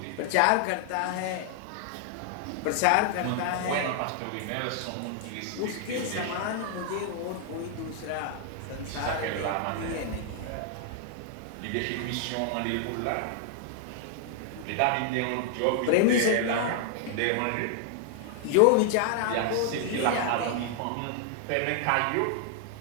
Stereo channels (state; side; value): different; both; correlation 0.00